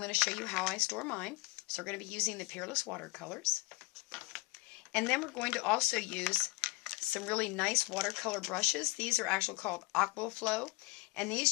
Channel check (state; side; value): quieter; right; 23.2 dB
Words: to show you how I store mine. So we're going to be using the Peerless Watercolors. And then we're going to also use some really nice watercolor brushes. These are actually called Aqua Flow, and